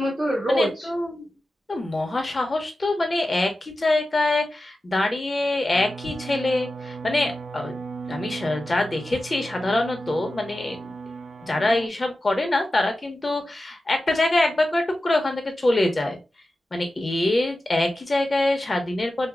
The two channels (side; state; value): both; normal; correlation 0.93